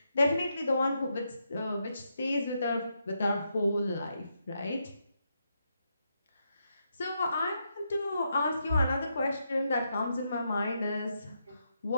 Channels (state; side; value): inverted; both; correlation -0.81